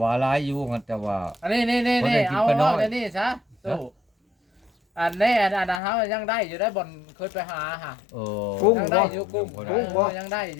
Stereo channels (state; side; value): drops out; right; at 5.8 s